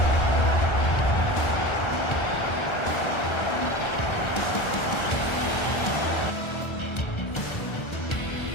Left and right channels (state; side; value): late; right; 1.3 ms